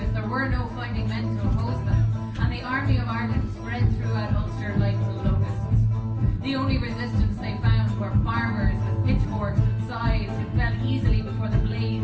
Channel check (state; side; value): identical; both; correlation 1.00